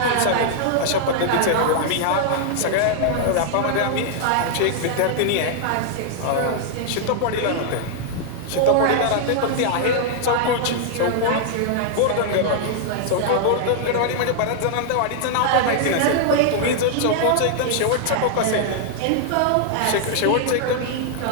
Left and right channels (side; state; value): both; different; correlation -0.01